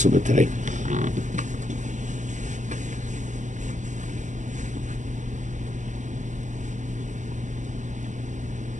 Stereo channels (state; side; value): late; left; 0.35 ms